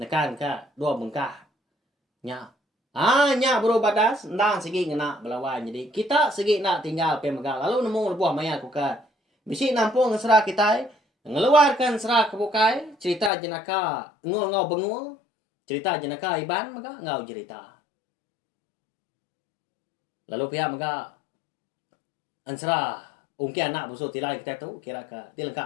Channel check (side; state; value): right; drops out; at 13.3 s